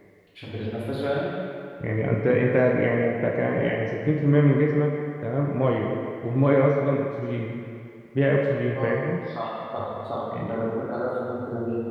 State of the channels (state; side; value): identical; both; correlation 1.00